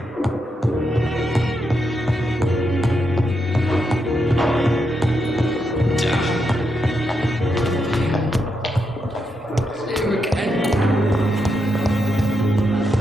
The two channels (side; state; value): both; normal; correlation 0.83